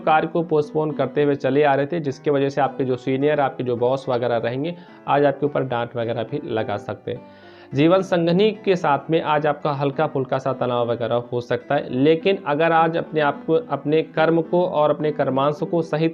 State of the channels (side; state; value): both; identical; correlation 1.00